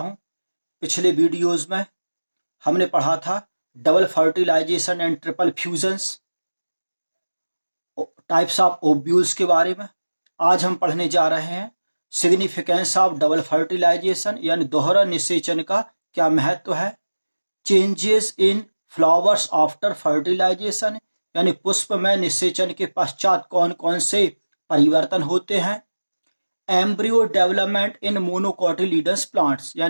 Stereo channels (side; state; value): both; inverted; correlation -1.00